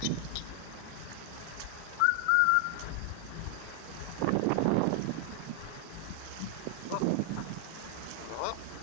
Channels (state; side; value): different; both; correlation 0.00